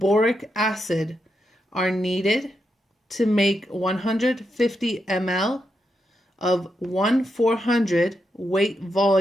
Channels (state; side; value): normal; both; correlation 0.84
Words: acid are needed to make 150 ml of 1/400 weight